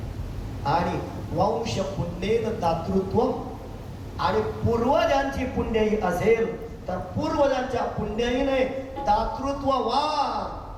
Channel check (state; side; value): identical; both; correlation 1.00